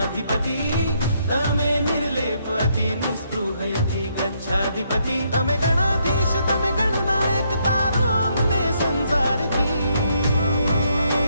गच्छाधिपति तमे निर्लेपति निस्पृहयति गच्छाधिपति तमे गणाधीश तमे गणनायक तारो अमने संसारथी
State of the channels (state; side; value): inverted; both; correlation -0.74